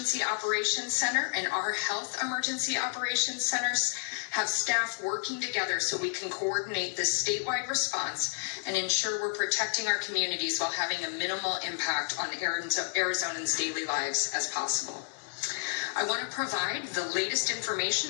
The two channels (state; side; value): silent; right; digital silence